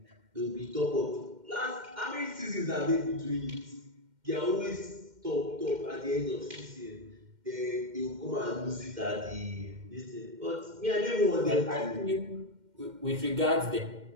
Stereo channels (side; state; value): left; late; 2.1 ms